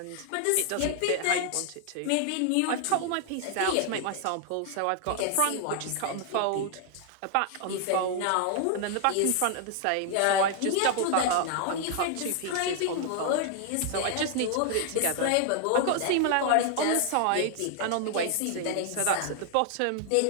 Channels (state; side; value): different; both; correlation 0.00